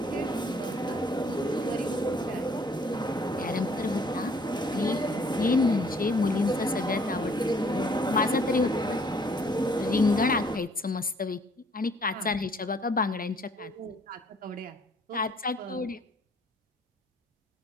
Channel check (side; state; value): both; normal; correlation 0.61